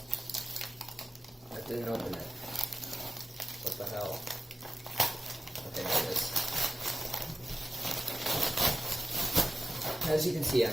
I didn't open it. What the hell? Okay, there it is. As you can see, I'm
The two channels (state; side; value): normal; both; correlation 0.95